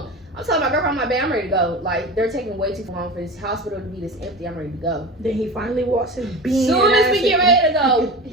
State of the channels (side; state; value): both; normal; correlation 0.30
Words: I'm telling my girlfriend, I'm like, babe, I'm ready to go. Like, they're taking way too long for this hospital to be this empty. I'm ready to go. Then he finally walks his bean. Soon as we get ready to go,